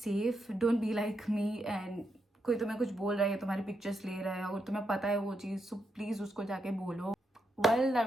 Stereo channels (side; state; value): both; normal; correlation 0.82